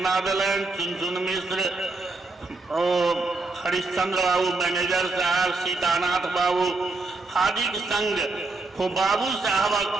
दिलन। चुनचुन मिश्र, हरिश्चंद्र बाबू मैनेजर साहब, सीतानाथ बाबू आदि के संग हो बाबू साहबक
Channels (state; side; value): quieter; left; 3.5 dB